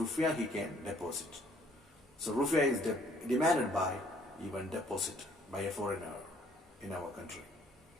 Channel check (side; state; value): both; normal; correlation 0.61